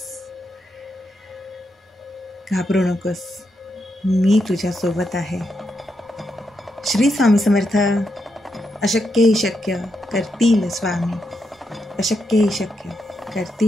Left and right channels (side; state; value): both; normal; correlation 0.83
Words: घाबरू नकोस. मी तुझ्यासोबत आहे. श्री स्वामी समर्थ. अशक्य ही शक्य करतील स्वामी. अशक्य ही शक्य